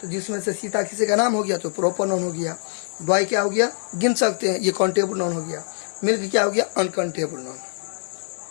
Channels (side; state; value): right; silent; 62 dB below the other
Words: तो जिसमें से सीता किसी का नाम हो गया तो प्रॉपर नॉन हो गया, बॉय क्या हो गया, गिन सकते हैं, ये काउंटेबल नॉन हो गया, मिल्क क्या हो गया, अनकाउंटेबल नॉन।